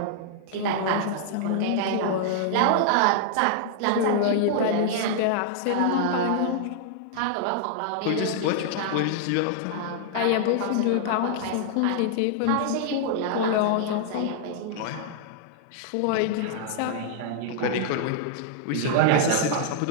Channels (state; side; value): different; both; correlation -0.01